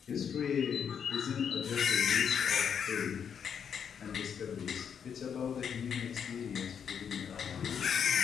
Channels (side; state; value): right; quieter; 7.6 dB